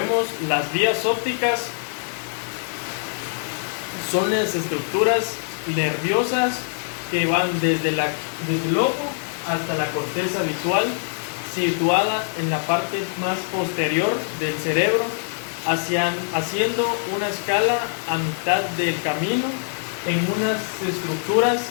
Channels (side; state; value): right; silent; 58 dB below the other